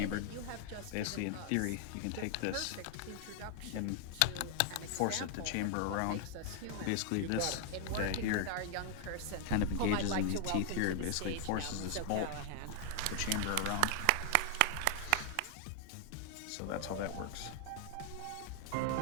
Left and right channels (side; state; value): both; different; correlation 0.00